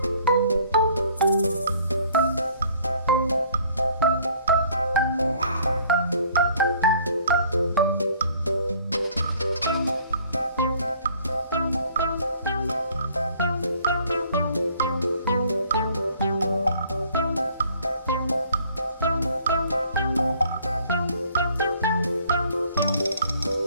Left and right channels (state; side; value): inverted; both; correlation -0.57